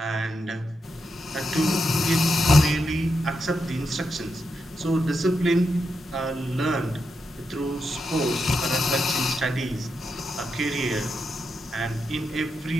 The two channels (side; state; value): both; normal; correlation 0.84